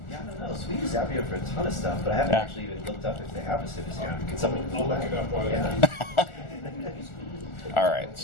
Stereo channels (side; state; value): right; late; 1.4 ms